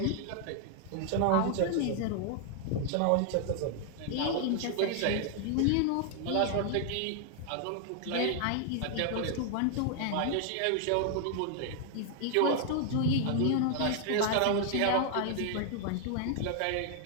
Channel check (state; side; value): different; both; correlation 0.00